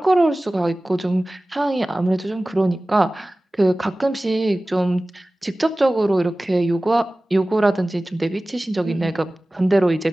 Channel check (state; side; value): normal; both; correlation 0.97